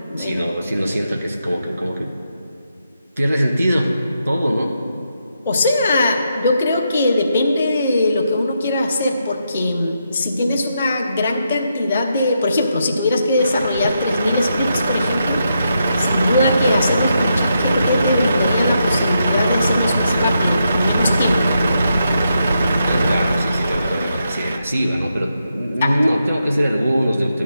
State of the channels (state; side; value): inverted; both; correlation -0.82